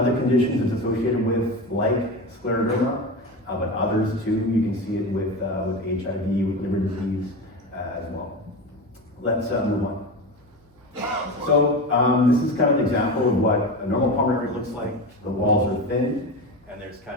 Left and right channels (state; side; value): normal; both; correlation 0.24